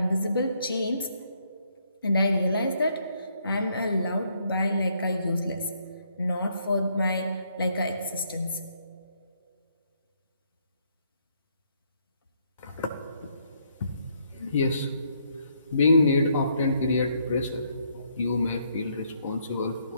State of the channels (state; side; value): inverted; both; correlation -0.72